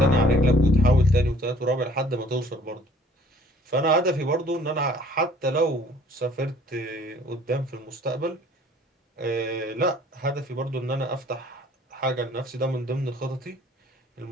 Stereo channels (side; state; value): both; normal; correlation 0.55